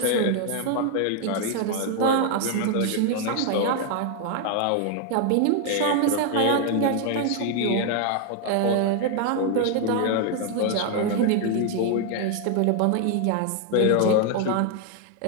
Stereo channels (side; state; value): both; different; correlation 0.00